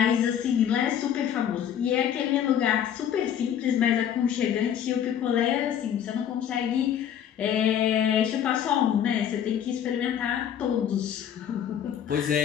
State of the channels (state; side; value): quieter; right; 9.5 dB